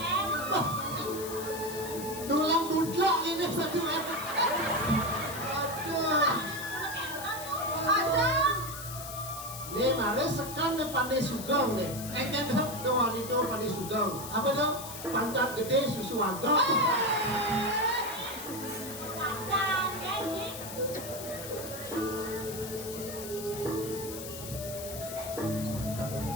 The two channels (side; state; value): left; noise; hiss, 10 dB below the sound